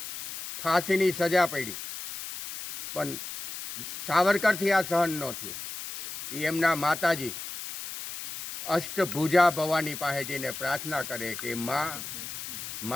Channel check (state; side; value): noise; left; hiss, 9 dB below the sound